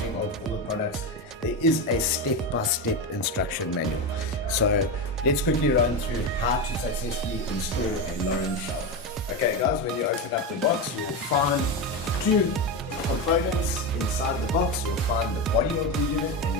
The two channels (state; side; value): normal; both; correlation 0.15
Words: of all the products, there is a step-by-step instruction manual. So let's quickly run through how to successfully install a Lorenzetti shower. Okay guys, when you open up the box, you'll find two components inside the box. You'll find the body of the unit and